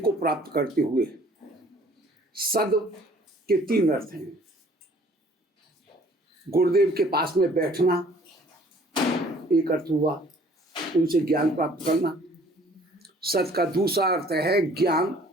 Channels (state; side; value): normal; both; correlation 0.56